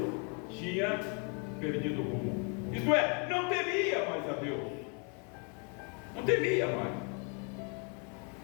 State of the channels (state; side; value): quieter; right; 36.6 dB